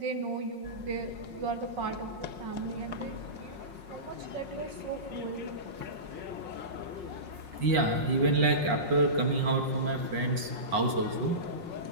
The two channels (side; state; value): left; late; 5.5 ms